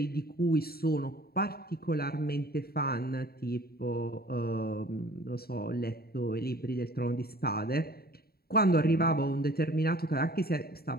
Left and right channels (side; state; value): right; late; 0.45 ms